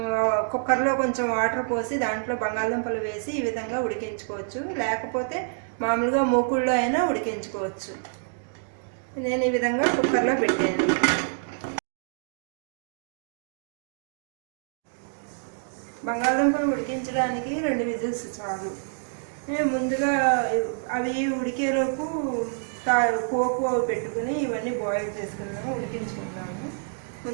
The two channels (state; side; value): silent; left; digital silence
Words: కుక్కర్లో కొంచెం వాటర్ పోసి దాంట్లో బంగాళదుంపలు వేసి ఈ విధంగా ఉడికించుకోవచ్చు. లేకపోతే మామూలుగా మూకుళ్ళలో అయినా ఉడికించుకోవచ్చు. నేను ఈ విధంగా కుక్కర్లో పెట్టాను. బంగాళదుంపలు ఉడికించడానికి 2 విజిల్స్ చాలు. ముందుగా అవి ఉడికేలోపు పోపు పెట్టుకుని ఇవన్నీ బాయిల్ చేసుకున్నాము, ఉడికించుకున్నాము.